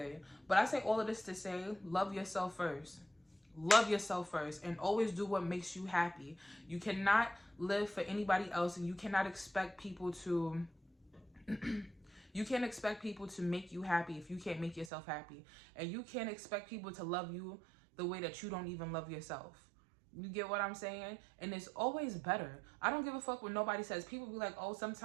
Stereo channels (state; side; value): drops out; left; at 14.9 s